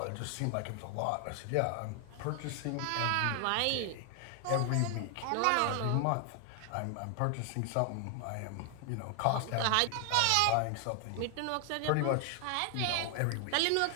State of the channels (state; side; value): different; both; correlation 0.00